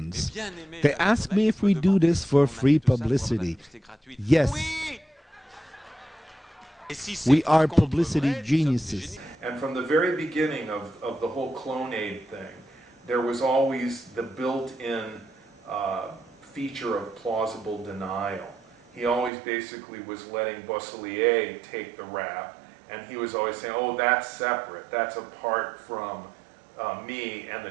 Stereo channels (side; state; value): left; drops out; at 19.3 s